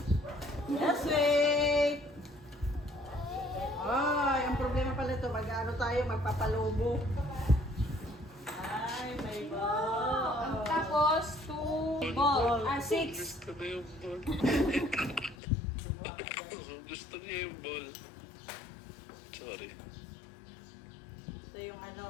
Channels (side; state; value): right; drops out; at 15.4 s